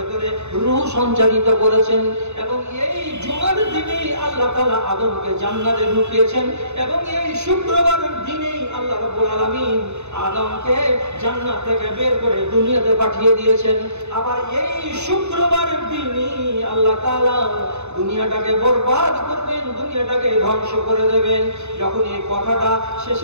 রূহ সঞ্চারিত করেছেন এবং এই জুমার দিনেই আল্লাহ তাআলা আদমকে জান্নাতে ঢুকিয়েছেন এবং এই শুক্রবারের দিনেই আল্লাহ রাব্বুল আলামিন আদমকে জান্নাত থেকে বের করে দুনিয়াতে পাঠিয়ে দিয়েছেন। আবার এই শুক্রবারের দিনই আল্লাহ তাআলা দুনিয়াটাকে বরবাদ করবেন, দুনিয়াটাকে ধ্বংস করে দেবেন। যখন এই কথাটা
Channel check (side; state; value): left; late; 0.82 ms